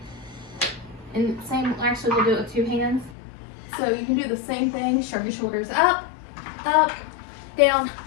and same, actually we'll do it with two hands. So you can do the same thing, shrug your shoulders up, down,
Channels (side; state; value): right; drops out; at 3.2 s